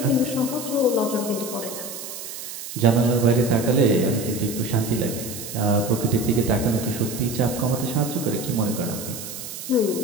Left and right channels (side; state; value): right; noise; hiss, 10 dB below the sound